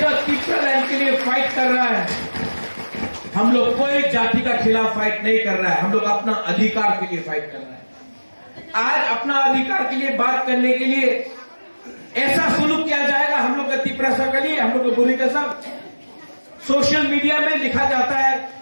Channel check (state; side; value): inverted; both; correlation -1.00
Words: त्रिपुरा लैंड के लिए फाइट कर रहा है। हम लोग कोई जाति का खिलाफ फाइट नहीं कर रहा है, हम लोग अपना अधिकार के लिए फाइट कर रहा है। आज अपना अधिकार के लिए बात करने के लिए ऐसा सुलूक किया जाएगा हम लोग का तिप्रसा के लिए, हम लोग को बुरी का सब सोशल मीडिया में लिखा जाता है,